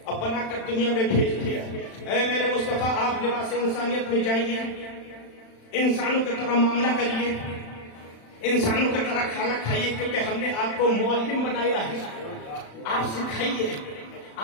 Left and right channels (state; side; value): late; right; 35 ms